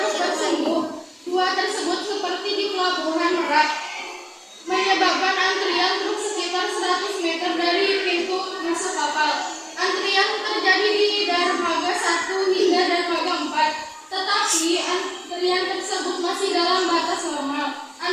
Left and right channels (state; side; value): identical; both; correlation 1.00